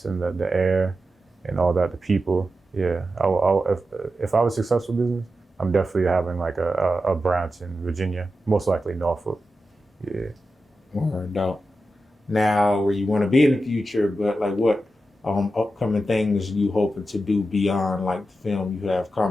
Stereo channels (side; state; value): both; normal; correlation 0.90